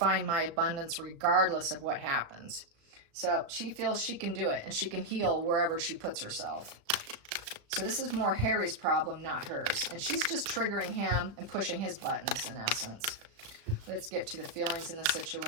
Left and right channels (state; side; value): late; left; 36 ms